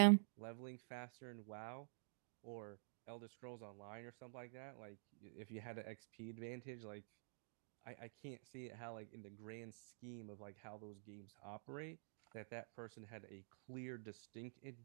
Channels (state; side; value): silent; left; digital silence